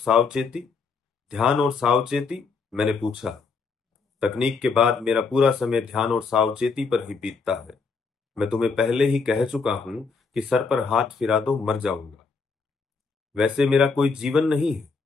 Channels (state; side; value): quieter; right; 4.8 dB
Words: ध्यान और सावचेती, मैंने पूछा। तकनीक के बाद मेरा पूरा समय ध्यान और सावचेती पर ही बीतता है। मैं तुम्हें पहले ही कह चुका हूं कि सर पर हाथ फिरा दो मर जाऊंगा। वैसे मेरा कोई जीवन नहीं है।